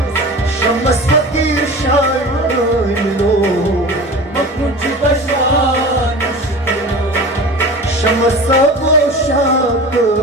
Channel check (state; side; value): normal; both; correlation 0.35